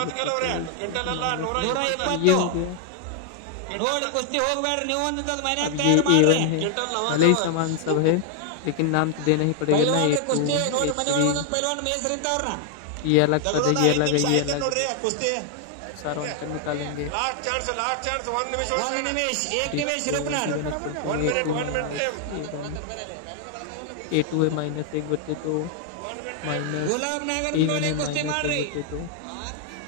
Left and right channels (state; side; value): different; both; correlation 0.00